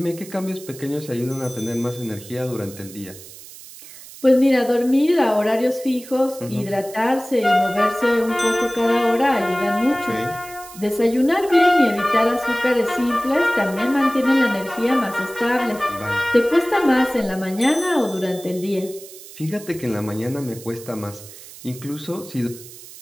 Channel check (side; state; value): right; noise; hiss, 17 dB below the sound